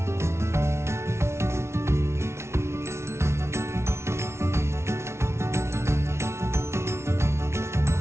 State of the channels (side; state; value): left; late; 0.13 ms